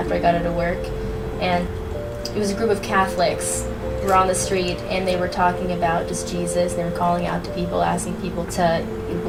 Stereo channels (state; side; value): identical; both; correlation 1.00